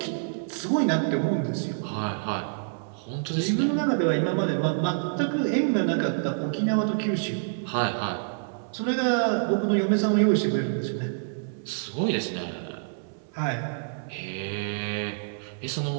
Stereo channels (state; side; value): silent; left; 60 dB below the other